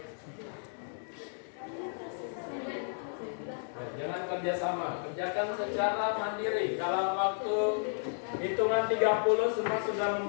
kerjasama. Kerjakan secara mandiri. Dalam waktu hitungan 30 semua sudah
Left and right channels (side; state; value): right; silent; digital silence